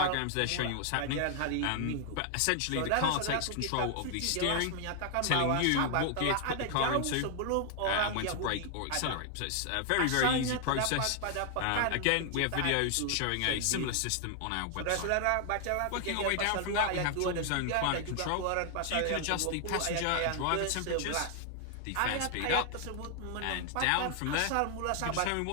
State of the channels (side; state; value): both; different; correlation 0.00